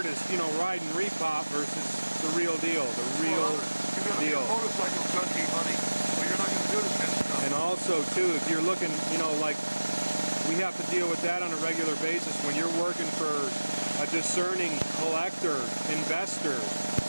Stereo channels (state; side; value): inverted; both; correlation -1.00